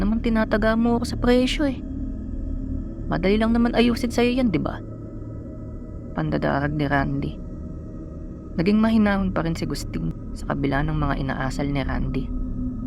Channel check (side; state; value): both; identical; correlation 1.00